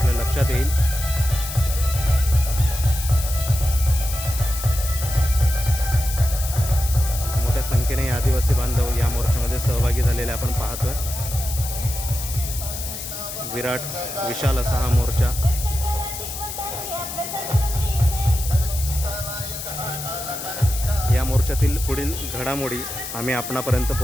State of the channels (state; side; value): noise; left; hiss, 8 dB below the sound